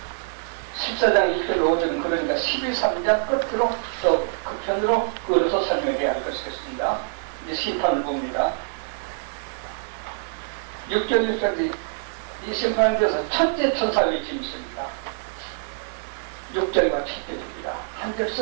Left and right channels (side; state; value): left; silent; digital silence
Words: 14장 1절 5절은 그러니까 12.3장 끝으로 또 끝편으로 그어서 설명해야 할 것이겠습니다. 이제 심판을 봅니다. 6절 6절이 이 심판에 대해서 첫째 천사 외침이 있습니다. 6절과 7절입니다. 한